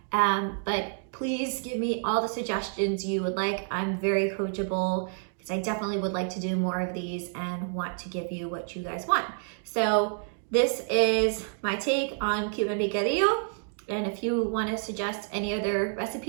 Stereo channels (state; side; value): silent; left; 59 dB below the other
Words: but please give me all the suggestions you would like. I'm very coachable because I definitely would like to do more of these and want to give you what you guys want. So this is my take on Cuban picadillo. And if you want to suggest any other